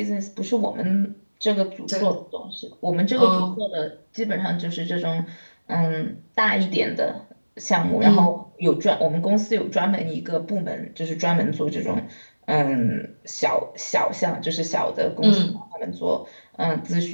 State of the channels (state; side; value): inverted; both; correlation -1.00